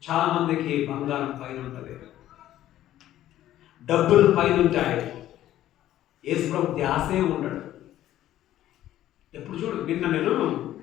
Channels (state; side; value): quieter; right; 13.1 dB